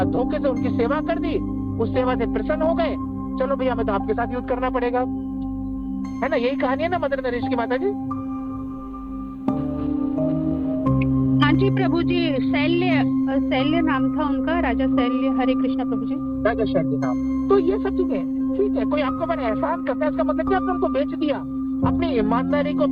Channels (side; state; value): both; identical; correlation 1.00